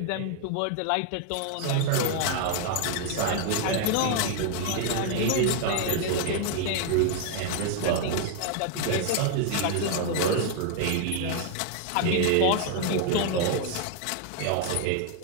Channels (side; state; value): both; different; correlation 0.00